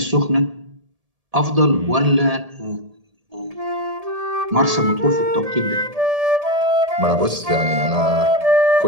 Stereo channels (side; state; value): left; late; 1.7 ms